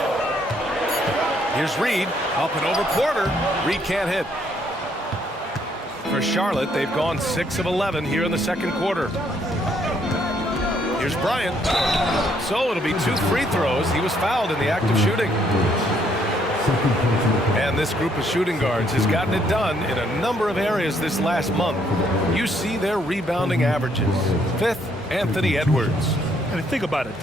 Here's Reed, up and over Porter. Reed can't hit. For Charlotte, they've gone 6 of 11 here in the second quarter. Here's Bryant. So it'll be 2 free throws. He was fouled in the act of shooting. And this group of shooting guards has gotten it done in a number of areas this last month. You see their rebounding averages. 5th, Anthony Edwards. And think about it.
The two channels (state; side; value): normal; both; correlation 0.69